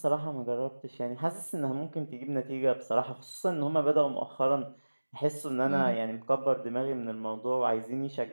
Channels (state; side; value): inverted; both; correlation -1.00